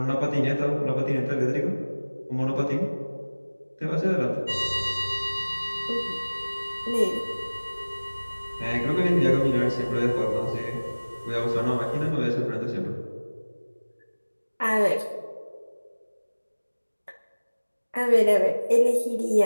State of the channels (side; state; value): both; inverted; correlation -1.00